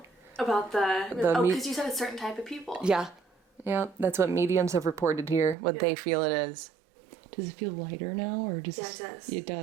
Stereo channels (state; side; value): drops out; left; at 5.6 s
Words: About because you said a certain type of people. Yeah. Yeah, that's what mediums have reported here, what they feel it is. Does it feel lighter now, or does it does. It